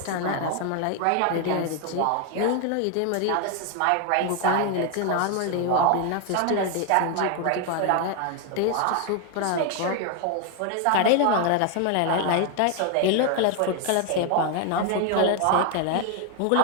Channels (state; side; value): different; both; correlation 0.01